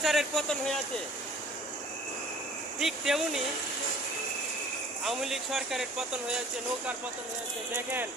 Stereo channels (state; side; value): normal; both; correlation 0.50